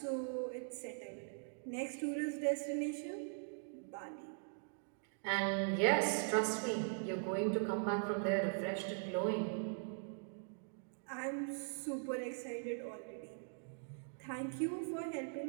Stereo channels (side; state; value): left; silent; digital silence